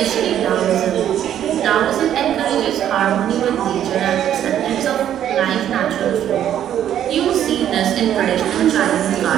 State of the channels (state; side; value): quieter; left; 10.6 dB